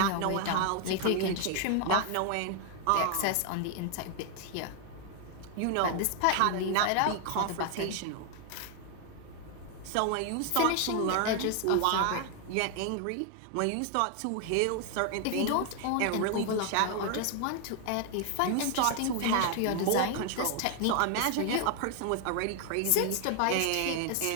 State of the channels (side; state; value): both; different; correlation 0.00